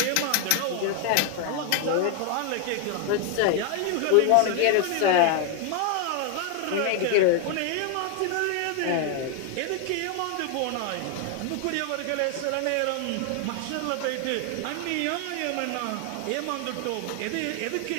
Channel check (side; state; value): both; different; correlation 0.01